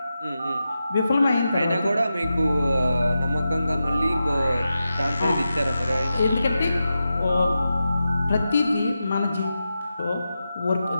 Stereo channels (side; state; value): both; inverted; correlation -0.90